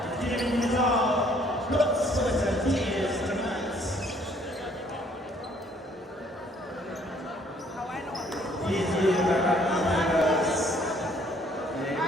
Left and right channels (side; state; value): both; normal; correlation 0.62